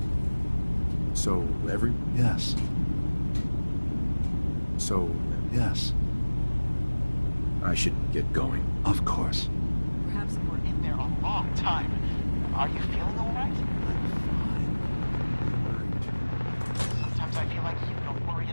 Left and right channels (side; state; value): both; inverted; correlation -1.00